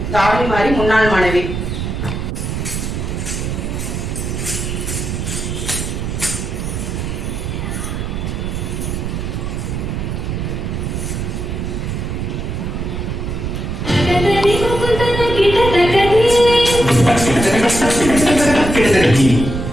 தாரணி மாறி முன்னாள் மாணவி.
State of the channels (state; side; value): noise; right; rumble, 3 dB below the sound